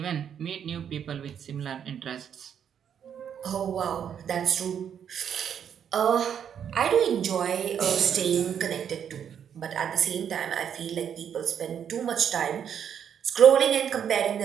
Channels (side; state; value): left; quieter; 8.5 dB